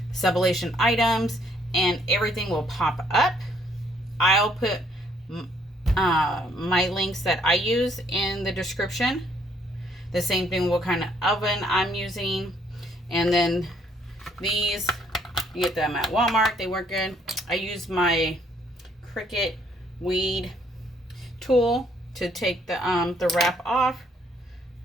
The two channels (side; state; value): both; normal; correlation 0.66